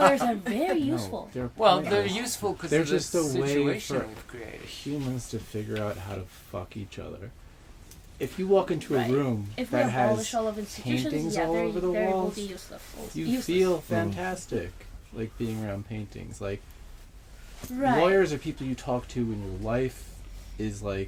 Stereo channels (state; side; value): identical; both; correlation 1.00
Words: are very useful. They're they're useful because they're of the just a way situation for we've created. humans to figure out how to fuck each other. If you walk into a room if we that abolish has all of institutions, paintings yeah, all over the they will walls, be useless. you feel fantastic, like being around paintings. Like, Right. lawyers are people you talk to when your life is